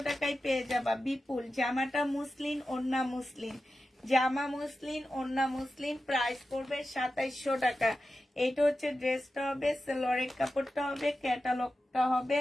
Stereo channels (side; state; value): both; normal; correlation 0.92